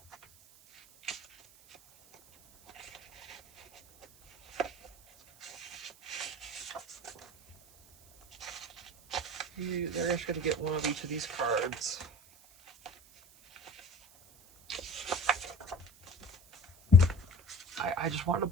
They're just gonna get one of each of these cards. I just wanted to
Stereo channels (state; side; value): noise; right; hiss, 25 dB below the sound